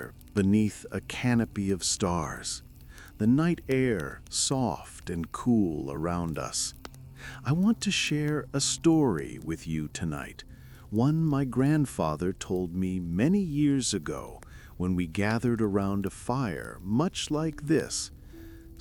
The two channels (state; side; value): identical; both; correlation 1.00